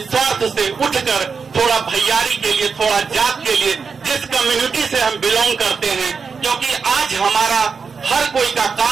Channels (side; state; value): left; quieter; 5.4 dB